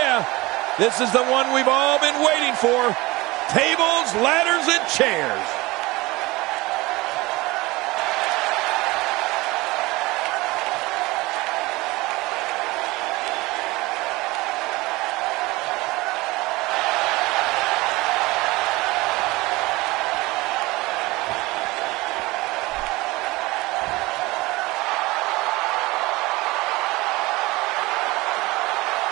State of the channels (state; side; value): quieter; left; 21.4 dB